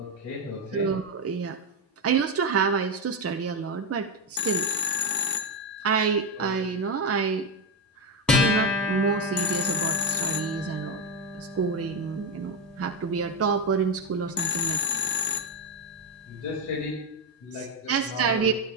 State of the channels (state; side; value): normal; both; correlation 0.06